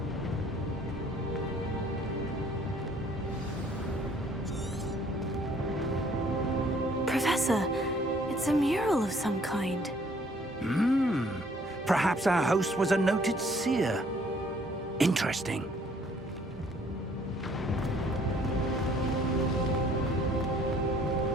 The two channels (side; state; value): both; normal; correlation 0.61